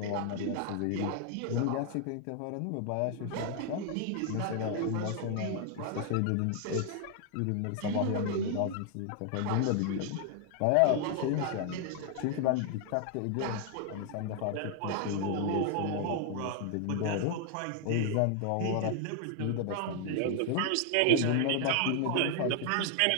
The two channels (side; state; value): both; different; correlation 0.00